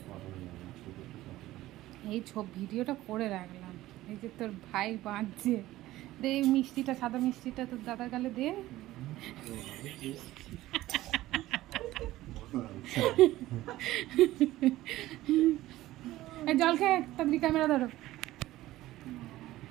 এই ভিডিওটা করে রাখলাম। এই যে তোর ভাই বাঁধছে, দে এই মিষ্টিটা, সাদা মিষ্টিটা তোর দাদার গালে দে। জল খেয়ে তাড়াতাড়ি ক্যামেরা ধরো।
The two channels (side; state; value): left; quieter; 16.1 dB